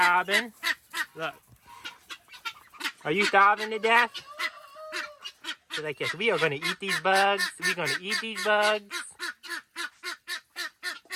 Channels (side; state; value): both; identical; correlation 1.00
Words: Look. Are you starving to death? They're like, yes, we are going to eat these bugs. We're going to eat these bugs.